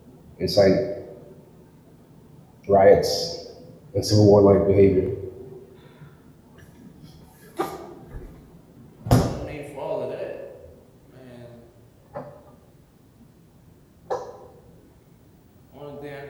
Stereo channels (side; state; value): both; identical; correlation 1.00